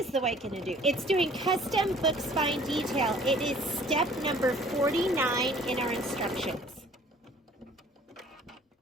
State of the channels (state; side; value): normal; both; correlation 0.53